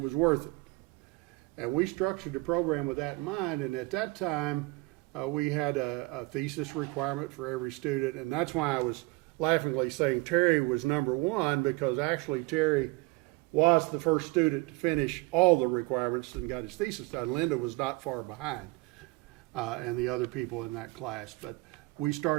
worth it. And we structured the program with that in mind, and at that time, we had a thesis requirement for every student, and that's why I was laughingly saying Terry was number one, because actually Terry was the first student to finish all the requirements and got his thesis done. Linda was not far behind, and the other people in that class. But we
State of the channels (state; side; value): quieter; left; 24.1 dB